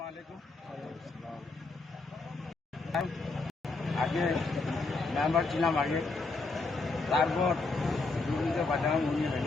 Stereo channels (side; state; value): right; quieter; 3.6 dB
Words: আগে মেম্বার ছিলাম আগে তারপর দুর্নীতি বাজানো নিয়ে